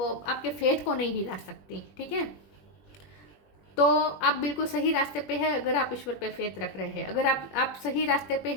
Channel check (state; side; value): late; right; 20 ms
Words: आपके फेथ को नहीं हिला सकती। ठीक है, तो आप बिल्कुल सही रास्ते पे है अगर आप ईश्वर पे फेथ रख रहे हैं। अगर आप सही रास्ते पे